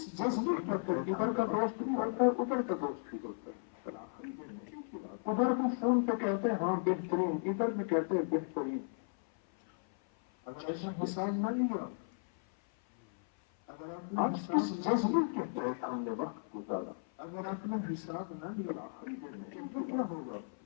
جذبے کہتے ہیں ادھر کا دوست بھی ہوتا ہے ادھر کا دوست بھی ہوتا ہے ادھر بھی فون پہ کہتے ہیں ہاں بہترین ادھر بھی کہتے ہیں بہترین اگر ایسا حساب نہ لیا اگر آپ نے کس جذبے کے تحت ہم نے وقت گزارا اگر آپ نے حساب نہ لیا تو کیا ہوگا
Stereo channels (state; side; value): silent; right; 54 dB below the other